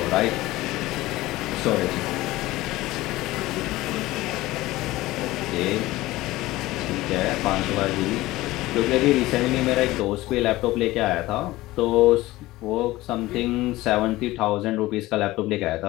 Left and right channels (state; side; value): quieter; right; 18.0 dB